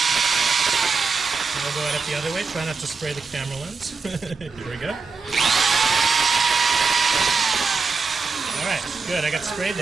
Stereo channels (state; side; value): quieter; left; 4.7 dB